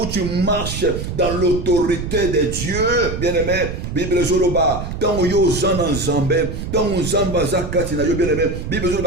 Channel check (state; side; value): noise; right; rumble, 6 dB below the sound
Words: tu marches dans l'autorité de Dieu, bien-aimé. Bible Zoloba, tant yo zan Zambé, tant zamba zakatina yo bien-aimé. Bible